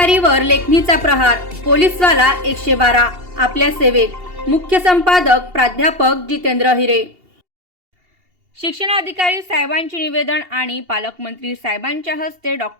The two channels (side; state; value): left; late; 2.8 ms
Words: लेखणीचा प्रहार, पोलीसवाला 112 आपल्या सेवेत। मुख्य संपादक प्राध्यापक जितेंद्र हिरे। शिक्षणाधिकारी साहेबांचे निवेदन आणि पालकमंत्री साहेबांच्या हस्ते